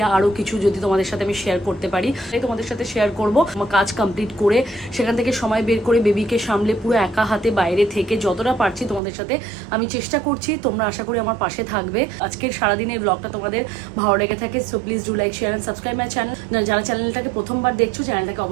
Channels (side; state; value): left; drops out; at 9.0 s